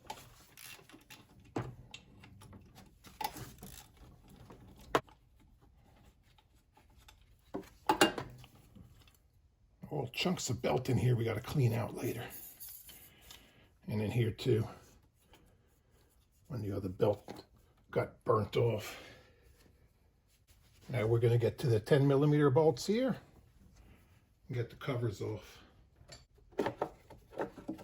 chunks of belt in here we got to clean out later. And in here too, when the other belt got burnt off. Now we're going to get to the 10mm bolts here and get the covers off.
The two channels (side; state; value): both; identical; correlation 1.00